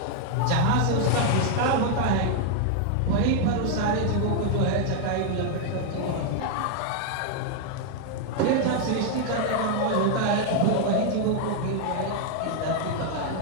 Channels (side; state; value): both; different; correlation 0.00